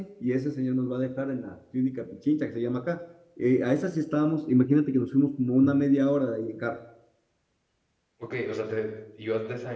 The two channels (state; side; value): identical; both; correlation 1.00